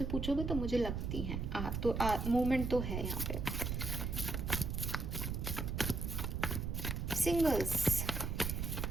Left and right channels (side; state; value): right; noise; rumble, 2 dB below the sound